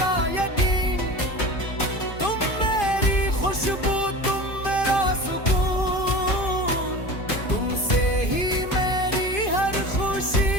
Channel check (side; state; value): right; late; 2.5 ms